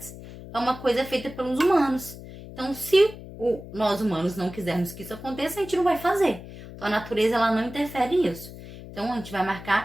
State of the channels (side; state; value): left; noise; hum, 14 dB below the sound